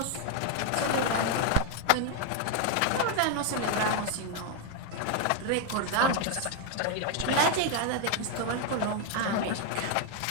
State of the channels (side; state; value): both; different; correlation 0.01